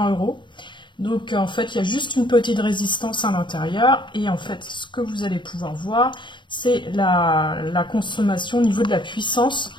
€. Donc en fait il y a juste une petite résistance à l'intérieur et en fait ce que vous allez pouvoir voir c'est la consommation au niveau de la puissance.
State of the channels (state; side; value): late; right; 0.23 ms